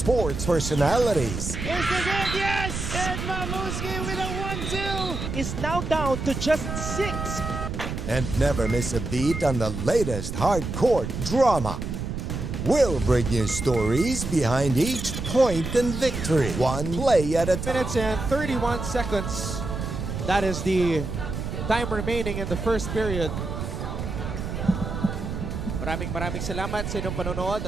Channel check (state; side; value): noise; right; rumble, 5 dB below the sound